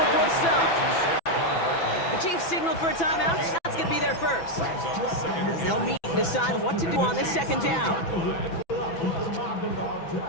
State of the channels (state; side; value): late; right; 6.0 ms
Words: the stop. The Chiefs signal for a timeout. That's going to be their first. As they'll meet and decide what to do on this 2nd down.